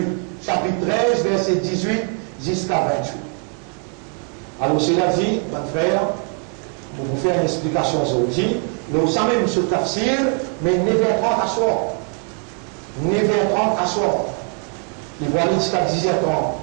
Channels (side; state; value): left; quieter; 39.9 dB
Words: Chapitre 13, verset 18 jusqu'à 28. Alors, cela dit, mon frère, pour vous faire une explication aujourd'hui, nous sommes même sur tafsir, mais 9h30 à soir. 9h30 à soir. Il va aller jusqu'à 10h30.